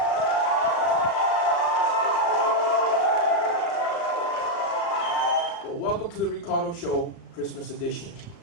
Well, welcome to the Ricardo Show, Christmas edition.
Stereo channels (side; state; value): right; late; 35 ms